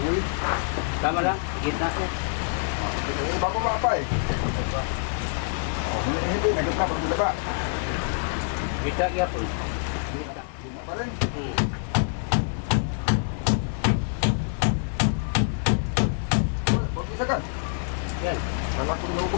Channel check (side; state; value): right; silent; 61 dB below the other